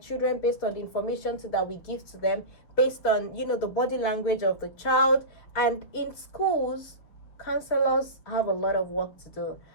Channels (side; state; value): right; late; 6.4 ms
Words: based on the information that we give to them, based on the body language of the child. And in schools, counselors have a lot of work to do.